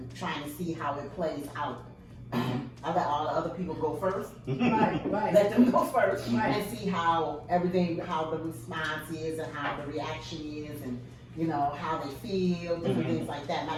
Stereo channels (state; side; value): identical; both; correlation 1.00